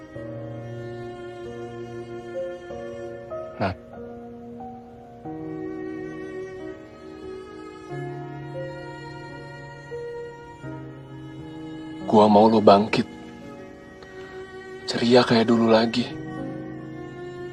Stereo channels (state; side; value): identical; both; correlation 1.00